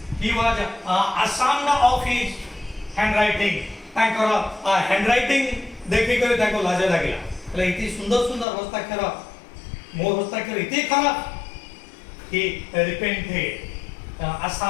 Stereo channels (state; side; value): drops out; right; at 8.5 s